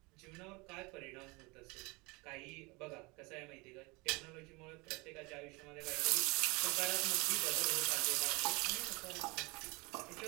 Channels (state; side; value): quieter; left; 26.4 dB